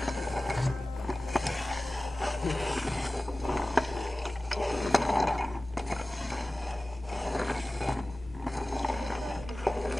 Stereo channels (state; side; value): normal; both; correlation 0.97